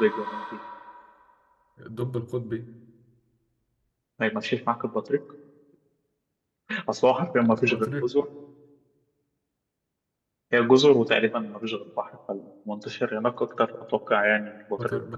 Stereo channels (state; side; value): identical; both; correlation 1.00